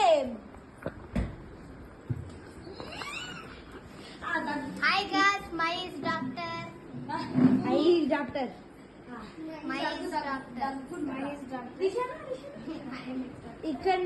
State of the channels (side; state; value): both; identical; correlation 1.00